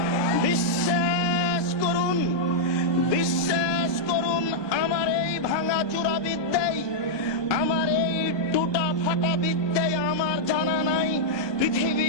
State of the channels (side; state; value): right; late; 1.2 ms